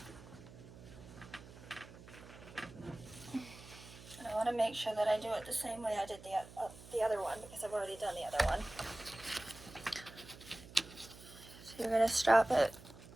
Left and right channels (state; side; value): noise; right; hum, 17 dB below the sound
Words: And I want to make sure that I do it the same way I did the other one, because I've already done the other one. So you're going to strap it